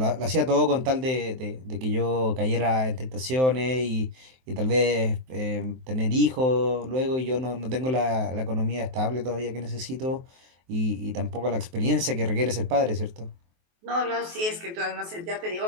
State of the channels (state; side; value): late; left; 23 ms